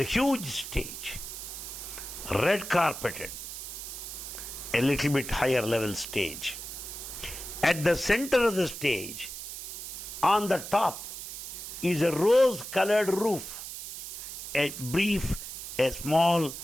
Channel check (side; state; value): right; noise; hiss, 9 dB below the sound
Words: huge stage, red carpeted, a little bit higher level stage. At the center of the stage, on the top, is a rose-colored roof, a small